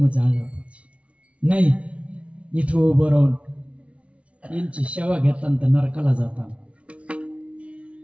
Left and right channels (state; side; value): late; left; 0.062 ms